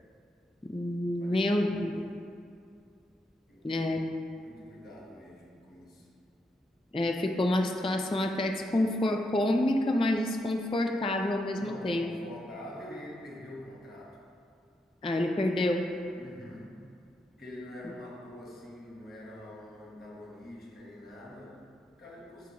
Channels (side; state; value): both; normal; correlation 0.82